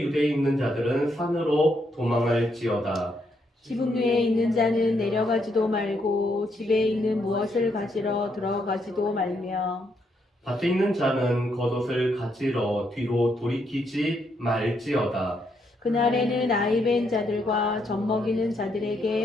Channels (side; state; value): both; normal; correlation 0.76